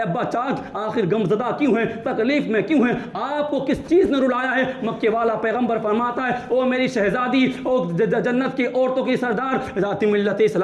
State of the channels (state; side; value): identical; both; correlation 1.00